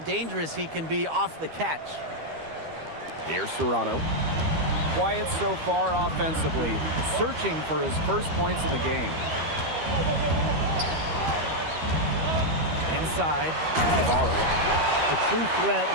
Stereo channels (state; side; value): late; left; 13 ms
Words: he can be off the catch. Here's Serrano. Quiet so far offensively, searching for his first points in the game. Inside, Navarro. A true threat